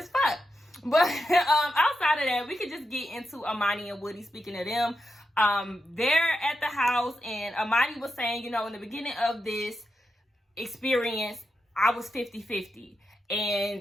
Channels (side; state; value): both; normal; correlation 0.87